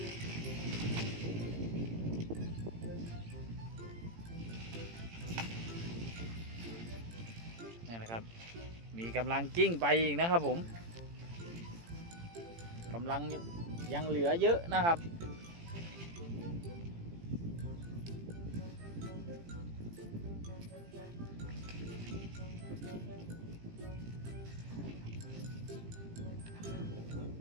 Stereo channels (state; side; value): late; left; 18 ms